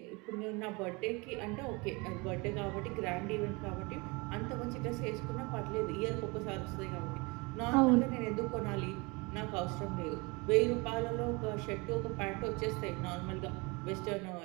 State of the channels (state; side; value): quieter; left; 27.3 dB